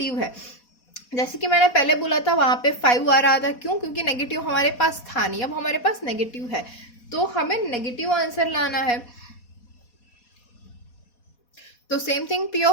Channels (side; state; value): right; late; 4.2 ms